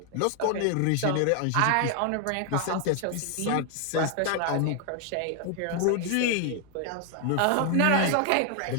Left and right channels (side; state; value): both; different; correlation 0.00